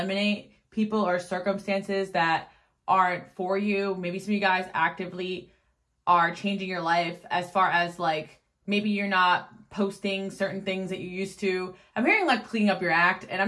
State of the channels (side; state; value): both; identical; correlation 1.00